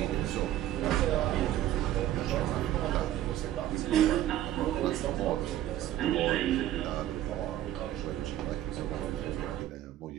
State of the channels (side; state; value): left; quieter; 13.0 dB